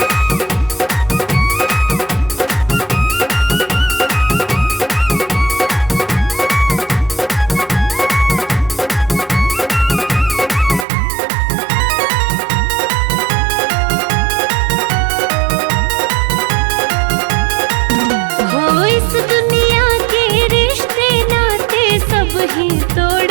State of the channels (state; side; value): drops out; left; at 10.9 s